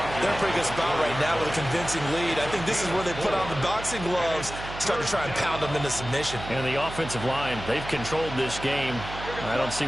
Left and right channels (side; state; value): right; noise; hum, 10 dB below the sound